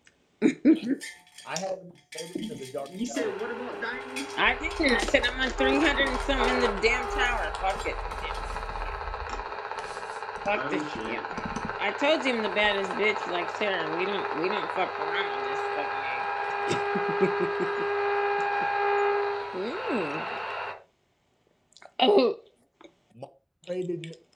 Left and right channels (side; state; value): both; identical; correlation 1.00